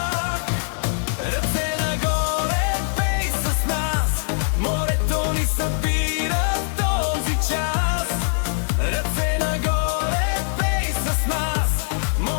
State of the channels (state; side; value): silent; right; digital silence